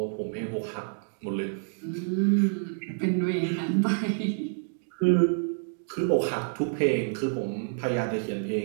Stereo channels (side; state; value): left; silent; digital silence